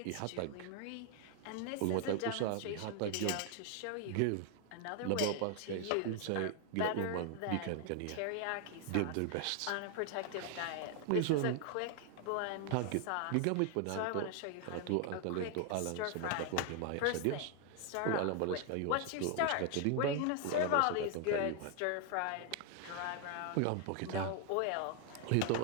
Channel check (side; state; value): both; different; correlation 0.00